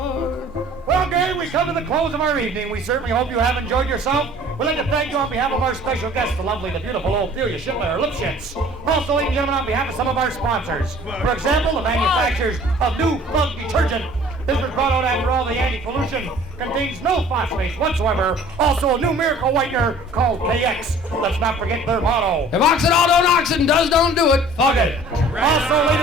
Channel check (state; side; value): normal; both; correlation 0.50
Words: Well, gang, we come to the close of our evening. We certainly hope you have enjoyed yourself. We'd like to thank you on behalf of our special guest, the lovely, the beautiful Ophelia Schindler Lipschitz. Also, ladies and gentlemen, on behalf of some of our sponsors. For example, the manufacturers of New Plug Detergent. This was brought out after all the anti-pollution. Contains no phosphates whatsoever. Also, a new miracle whitener called KX. Let's not forget their motto. If Oxidol don't oxen does, don't do it. Fuck it. Also,